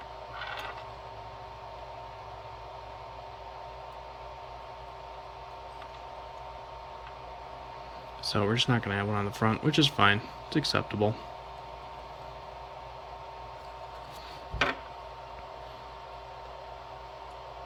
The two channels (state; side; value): identical; both; correlation 1.00